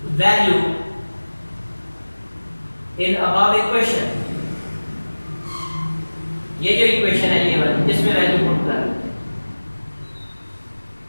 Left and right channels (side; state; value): both; inverted; correlation -1.00